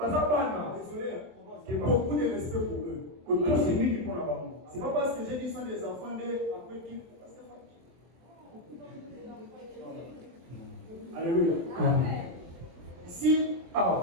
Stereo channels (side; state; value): left; late; 23 ms